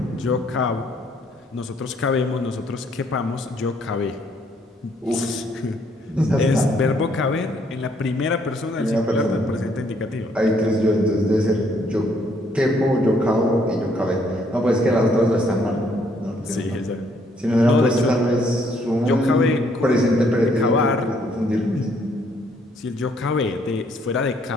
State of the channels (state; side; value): normal; both; correlation 0.67